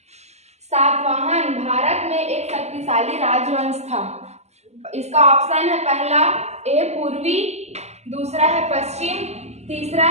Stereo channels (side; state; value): left; late; 0.32 ms